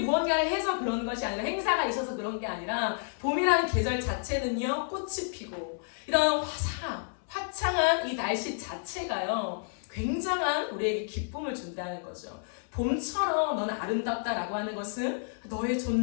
해서 그런 것이 아니라, 행사가 있어서 그런 게 아니라, 봄이라는 계절 자체는요, 꽃이 피고 이런 화창한 이 날씨 자체가요, 굉장한 우리에게 기쁨을 준다는 거죠. 봄처럼 너는 아름답다라고 하는 것은 너의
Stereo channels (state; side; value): silent; right; 58 dB below the other